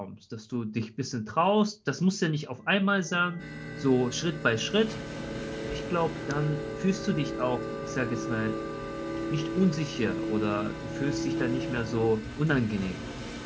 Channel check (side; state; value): both; identical; correlation 1.00